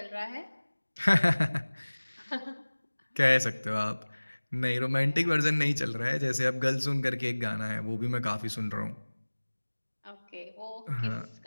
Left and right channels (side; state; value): both; inverted; correlation -1.00